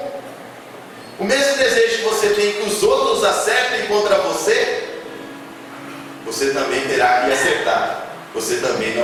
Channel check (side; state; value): both; identical; correlation 1.00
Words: o mesmo desejo que você tem que os outros acertem contra você, você também terá que acertar. Você também